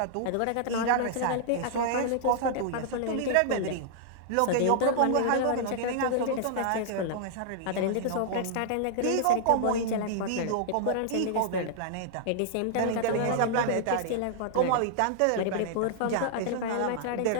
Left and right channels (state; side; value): different; both; correlation -0.01